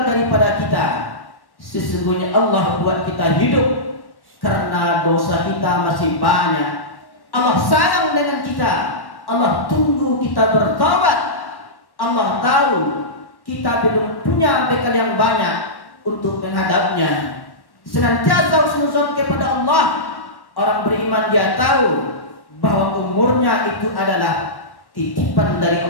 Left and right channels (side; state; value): right; late; 1.1 ms